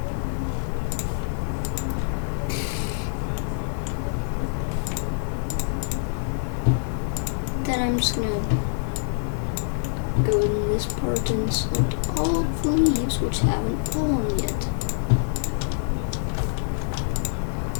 Then I'm just gonna go in this part and select all of the leaves which haven't fallen yet.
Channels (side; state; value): right; silent; 55 dB below the other